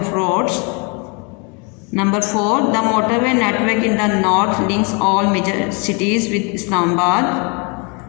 roads. Number 4, the motorway network in the north links all major cities with Islamabad.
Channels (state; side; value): quieter; right; 32.7 dB